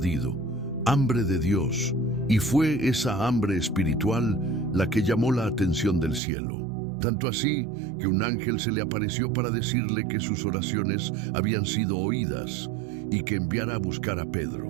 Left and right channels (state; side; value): drops out; left; at 6.2 s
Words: hambre de Dios. Y fue esa hambre espiritual la que llamó la atención del cielo. Tanto así que un ángel se le apareció para decirle que sus oraciones habían sido oídas y que enviara a buscar a